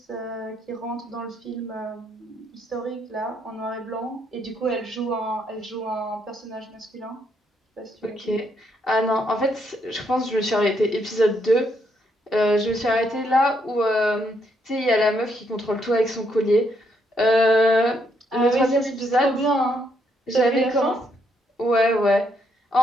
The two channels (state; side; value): normal; both; correlation 0.74